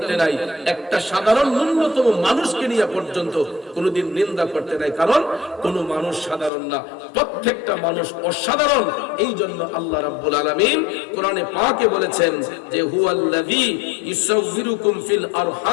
নাই। একটা সাধারণ ন্যূনতম মানুষকে নিয়ে পর্যন্ত কোনোদিন নিন্দা করতে নাই, কারণ কোন মানুষ সাধারণ না, প্রত্যেকটা মানুষ অসাধারণ। এই জন্য আল্লাহ রাব্বুল আলামিন কোরআনে পাকে বলেছেন যে হুয়াল্লাযী ইউসাউবিরুকুম ফিল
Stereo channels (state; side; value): drops out; right; at 6.5 s